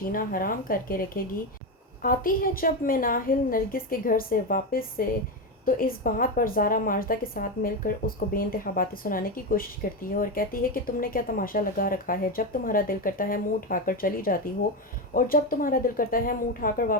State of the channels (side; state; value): both; normal; correlation 0.13